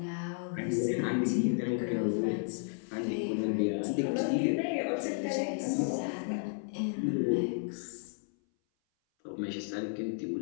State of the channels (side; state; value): right; silent; 56 dB below the other